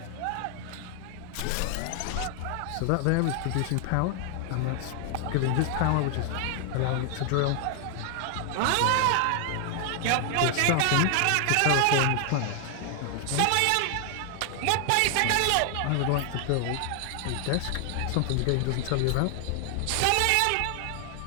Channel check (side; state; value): both; different; correlation 0.00